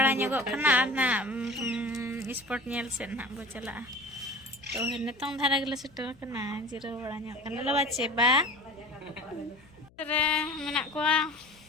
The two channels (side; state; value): left; noise; hum, 28 dB below the sound